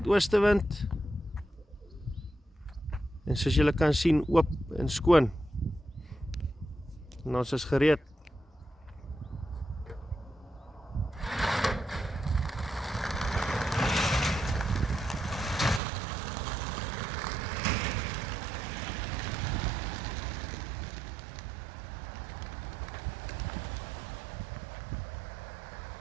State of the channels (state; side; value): drops out; left; at 15.8 s